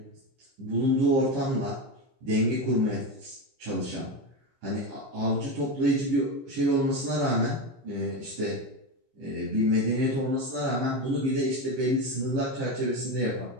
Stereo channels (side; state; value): left; late; 15 ms